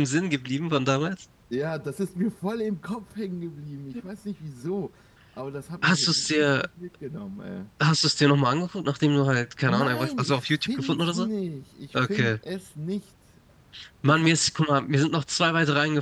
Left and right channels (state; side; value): identical; both; correlation 1.00